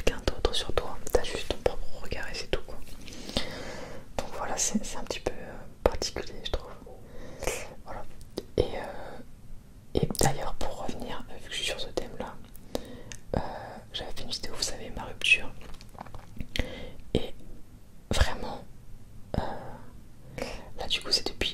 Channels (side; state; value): both; identical; correlation 1.00